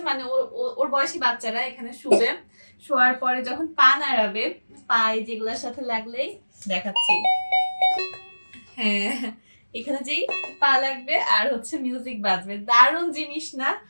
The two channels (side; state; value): both; inverted; correlation -1.00